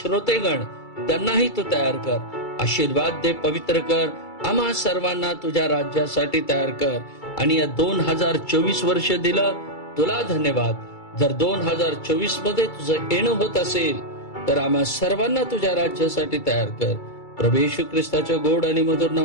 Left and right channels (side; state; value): right; late; 2.3 ms